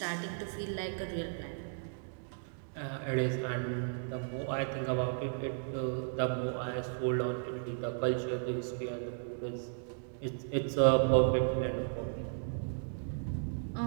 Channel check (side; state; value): left; silent; digital silence